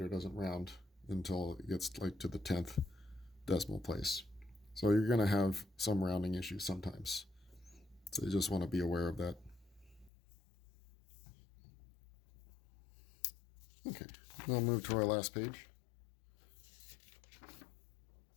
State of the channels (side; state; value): right; drops out; at 10.1 s